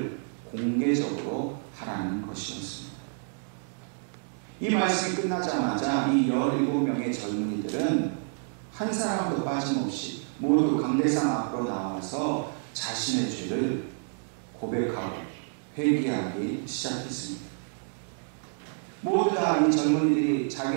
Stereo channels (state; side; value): silent; left; 59 dB below the other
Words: 공개적으로 하라는 것이었습니다. 이 말씀이 끝나자마자 이 17명의 젊은이들은 한 사람도 빠짐없이 모두 강대상 앞으로 나와서 자신의 죄를 고백하고 회개하기 시작했습니다. 모두 다 이 젊은이들이